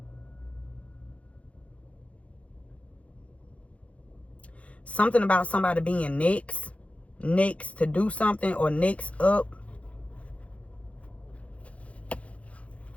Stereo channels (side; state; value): right; late; 0.064 ms